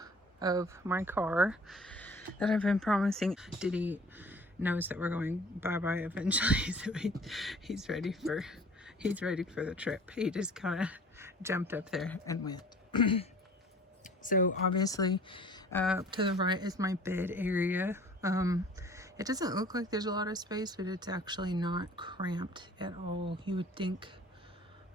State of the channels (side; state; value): both; normal; correlation 0.49